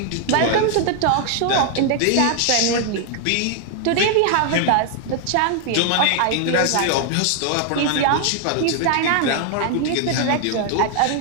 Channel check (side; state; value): both; different; correlation 0.00